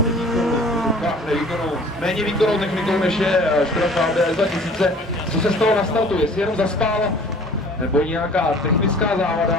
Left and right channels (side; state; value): both; normal; correlation 0.49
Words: méně výkonnou technikou, než je Škoda Fabia S2000. Co se stalo na startu? Jestli jenom zaspal, nebo nějaká technická